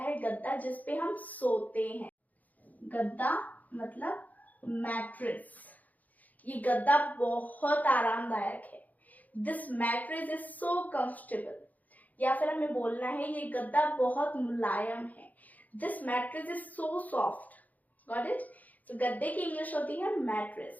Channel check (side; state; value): right; late; 0.079 ms